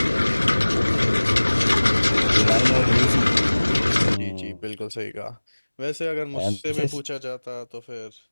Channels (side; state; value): both; inverted; correlation -1.00